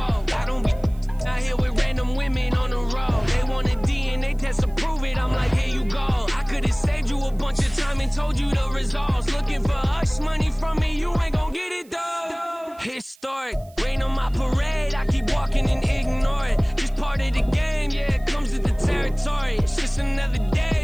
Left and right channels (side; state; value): right; noise; hiss, 28 dB below the sound